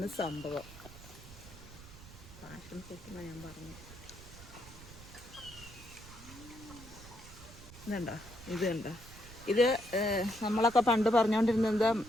സംഭവം. പാഷൻ ഫ്രൂട്ട് എന്നാണ് ഞാൻ പറഞ്ഞു. ഇതുണ്ടോ, ഇത് കണ്ടോ, ഇത് നമ്മളൊക്കെ പണ്ട് പറഞ്ഞുകൊണ്ടിരുന്നത് എന്താ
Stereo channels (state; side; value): noise; right; rumble, 17 dB below the sound